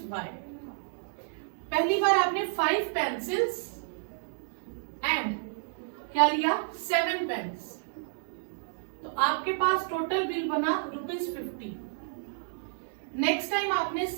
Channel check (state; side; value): silent; left; digital silence